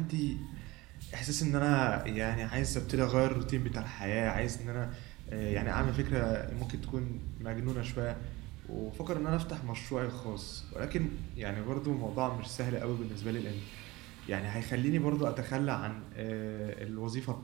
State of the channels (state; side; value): quieter; left; 21.0 dB